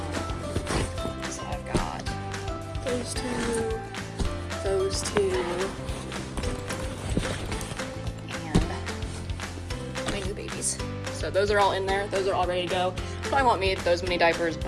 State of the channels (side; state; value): both; identical; correlation 1.00